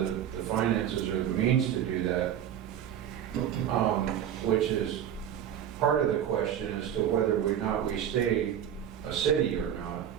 the finances or the means to do that, which is part of the question as to whether or not we stay a city or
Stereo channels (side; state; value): left; quieter; 10.0 dB